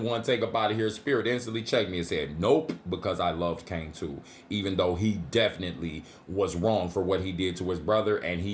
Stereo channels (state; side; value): identical; both; correlation 1.00